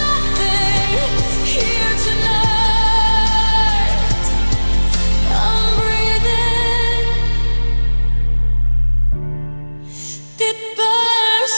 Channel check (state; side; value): inverted; both; correlation -1.00